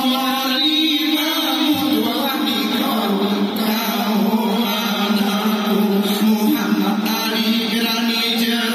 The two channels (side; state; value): both; identical; correlation 1.00